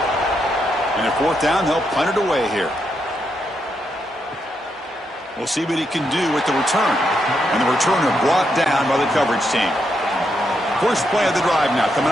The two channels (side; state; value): both; normal; correlation 0.81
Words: And at 4th down, they'll punt it away here. We'll see what he can do with the return. And the returner brought down by the coverage team. First play of the drive now, coming